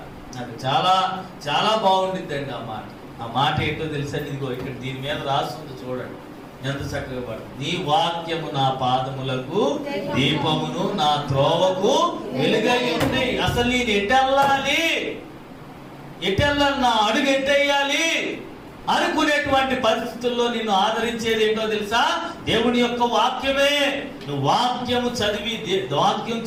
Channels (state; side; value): identical; both; correlation 1.00